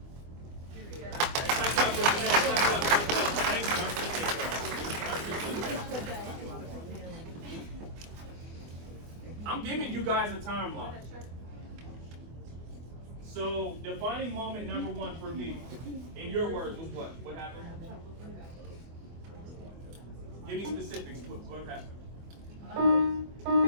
Yeah. I'm giving you guys a timeline. So, defining moment number 1 for me, in your words, was what? What happened? Give me specifics. What happened?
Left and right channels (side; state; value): left; late; 24 ms